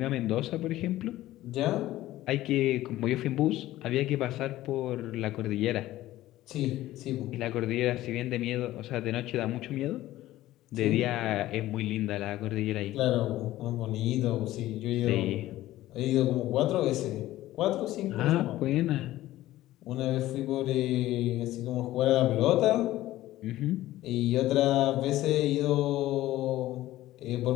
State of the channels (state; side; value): quieter; right; 15.4 dB